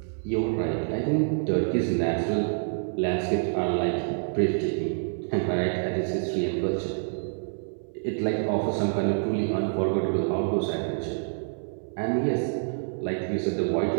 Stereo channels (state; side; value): silent; left; 60 dB below the other